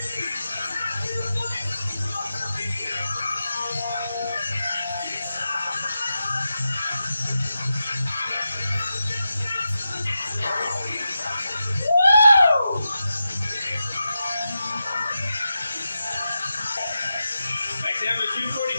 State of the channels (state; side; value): inverted; both; correlation -0.90